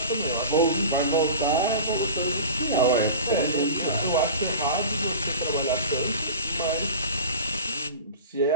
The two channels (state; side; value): inverted; both; correlation -0.34